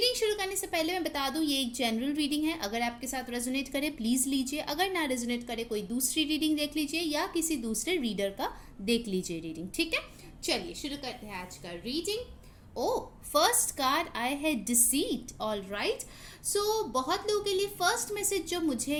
शुरू करने से पहले मैं बता दूं ये एक जनरल रीडिंग है। अगर आपके साथ रेजोनेट करे प्लीज़ लीजिए, अगर ना रेजोनेट करे कोई दूसरी रीडिंग देख लीजिए या किसी दूसरे रीडर का देख लीजिए रीडिंग। ठीक है, चलिए शुरू करते हैं आज का रीडिंग। फर्स्ट कार्ड आई है डिसीट। ऑल राइट, सो बहुत लोगों के लिए फर्स्ट मैसेज जो मुझे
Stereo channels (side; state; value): both; identical; correlation 1.00